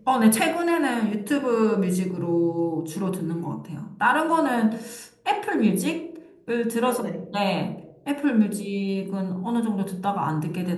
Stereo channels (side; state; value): both; identical; correlation 1.00